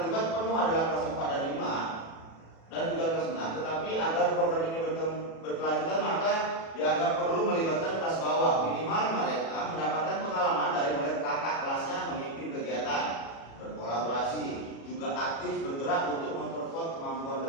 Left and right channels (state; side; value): late; right; 36 ms